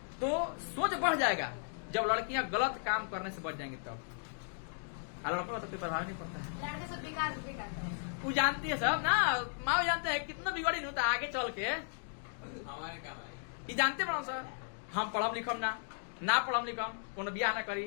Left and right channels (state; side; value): silent; right; digital silence